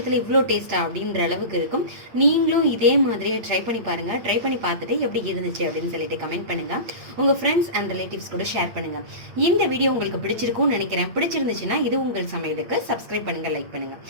இவ்வளோ டேஸ்ட்டாக அப்படின்ற அளவுக்கு இருக்கும். நீங்களும் இதே மாதிரியே ட்ரை பண்ணி பாருங்கள். ட்ரை பண்ணி பார்த்துட்டு எப்படி இருந்துச்சு அப்படின்னு சொல்லிட்டு கமெண்ட் பண்ணுங்கள். உங்கள் ஃப்ரெண்ட்ஸ் அண்ட் ரிலேட்டிவ்ஸ் கூட ஷேர் பண்ணுங்கள். இந்த வீடியோ உங்களுக்கு பிடிச்சிருக்கும்னு நினைக்கிறேன். பிடிச்சிருந்துச்சுன்னா இது உங்கள் சமையலுக்கு சப்ஸ்கிரைப் பண்ணுங்கள், லைக் பண்ணுங்கள்.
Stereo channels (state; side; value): late; left; 8.9 ms